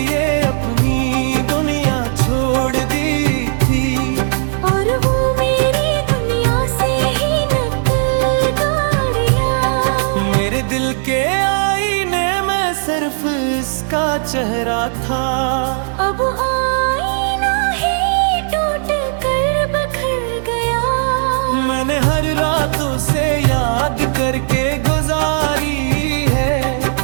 अपनी दुनिया छोड़ दी थी, और वो मेरी दुनिया से ही नकल गाड़िया। मेरे दिल के आईने में सिर्फ इसका चेहरा था। अब आईना ही टूट कर बखर गया। मैंने हर रातों से याद करके गुजारी है,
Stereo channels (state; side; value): silent; left; digital silence